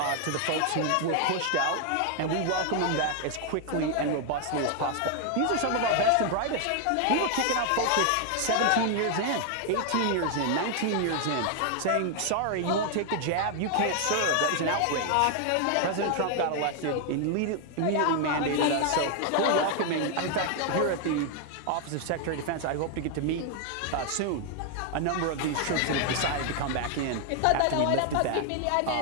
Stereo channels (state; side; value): different; both; correlation 0.00